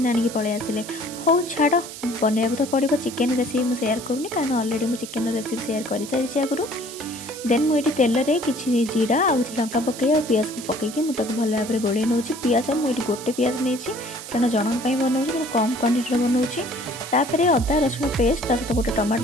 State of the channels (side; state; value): right; noise; hiss, 12 dB below the sound